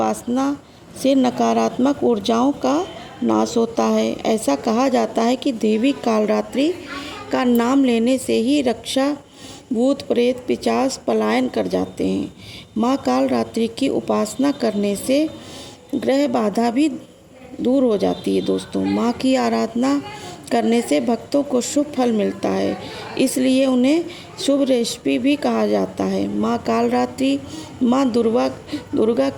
से नकारात्मक ऊर्जाओं का नाश होता है। ऐसा कहा जाता है कि देवी कालरात्रि का नाम लेने से ही रक्षा भूत प्रेत पिशाच पलायन कर जाते हैं। माँ कालरात्रि की उपासना करने से ग्रह बाधा भी दूर हो जाती है। दोस्तों माँ की आराधना करने से भक्तों को शुभ फल मिलता है, इसलिए उन्हें शुभ रेसिपी भी कहा जाता है। माँ कालरात्रि माँ दुर्गा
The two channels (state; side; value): identical; both; correlation 1.00